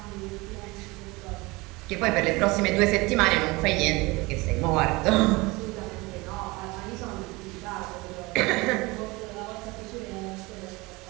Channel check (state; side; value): quieter; left; 23.6 dB